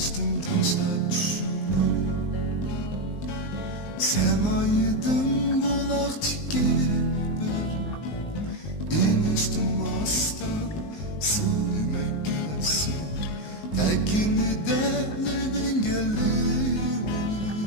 taşlar düşündüm. Semaydın bulak tikibir iniş durmasdan sevmekesi tekini delevengiliyim.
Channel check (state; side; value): late; right; 19 ms